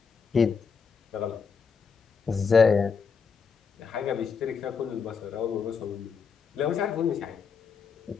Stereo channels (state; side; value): quieter; right; 5.7 dB